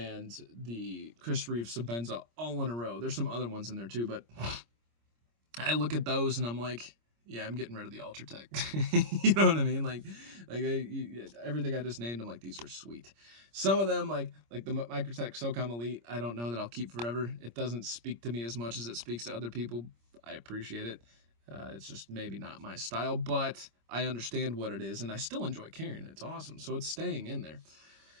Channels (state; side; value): late; left; 26 ms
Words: the Chris Reeve Sabenza all in a row. There's some other ones in there too, but I look at those and I'm like, yeah, I'm getting rid of the Ultratech. You know what I mean? Like everything I just named, I'm like, these are sweet. Some of them, like the Microtech SOCOM Elite, I don't know that I'll keep forever. It doesn't speak to me as much as it speaks to other people. I appreciate it. It's just maybe not my style, but I understand what it is, and I still enjoy carrying it. It's awesome, so it's staying in there.